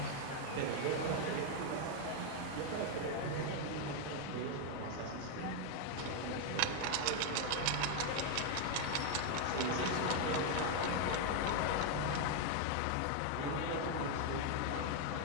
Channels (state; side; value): different; both; correlation 0.01